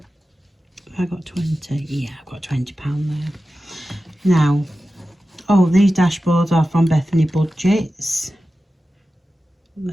I got 20. Yeah, I've got £20 there. Now, oh, these dashboards are from Bethany Budgets.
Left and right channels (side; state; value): both; normal; correlation 0.94